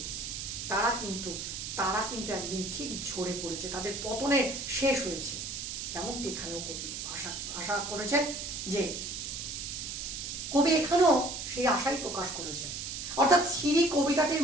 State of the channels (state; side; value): noise; right; hiss, 6 dB below the sound